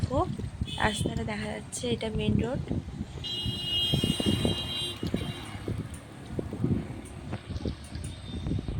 রাস্তাটা দেখা যাচ্ছে, এটা মেন রোড।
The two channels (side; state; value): both; identical; correlation 1.00